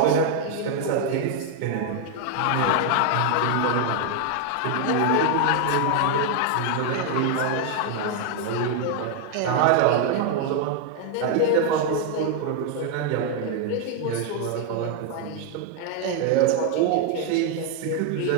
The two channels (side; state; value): both; different; correlation 0.00